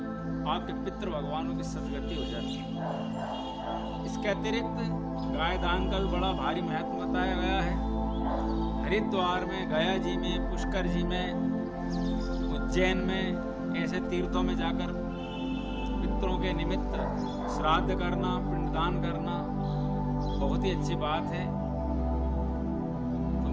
आपके पितृ भगवानों की सदगति हो जाती है। इसके अतिरिक्त गाय दान का भी बड़ा भारी महत्व बताया गया है। हरिद्वार में, गया जी में, पुष्कर जी में, उज्जैन में ऐसे तीर्थों में जाकर पितरों के निमित्त श्राद्ध करना, पिंडदान करना बहुत ही अच्छी बात है। तो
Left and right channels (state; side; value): identical; both; correlation 1.00